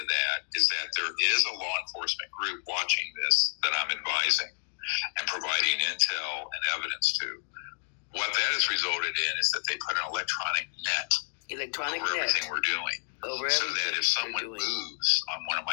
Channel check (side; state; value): right; silent; digital silence